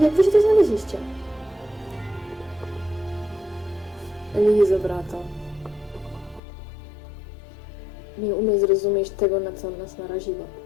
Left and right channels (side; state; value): right; drops out; at 6.4 s